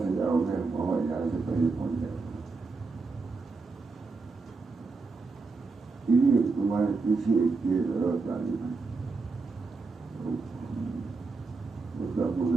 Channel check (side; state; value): left; quieter; 4.1 dB